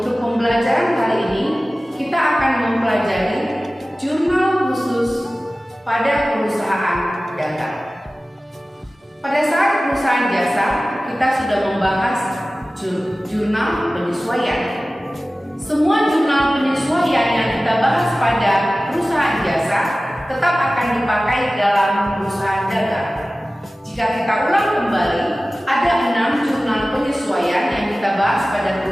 pembelajaran kali ini kita akan mempelajari jurnal khusus pada perusahaan dagang. Pada saat perusahaan jasa, kita sudah membahas jurnal penyesuaian. Semua jurnal penyesuaian yang kita bahas pada perusahaan jasa tetap akan dipakai dalam perusahaan dagang. Jika kita ulang kembali, ada 6 jurnal penyesuaian yang kita bahas pada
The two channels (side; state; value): both; normal; correlation 0.96